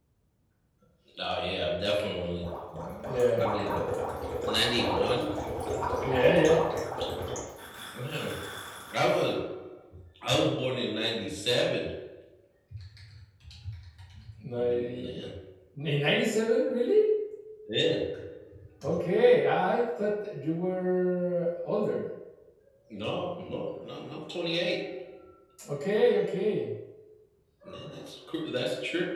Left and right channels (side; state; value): both; identical; correlation 1.00